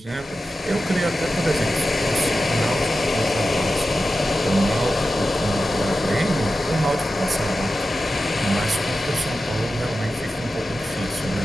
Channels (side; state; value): both; normal; correlation 0.92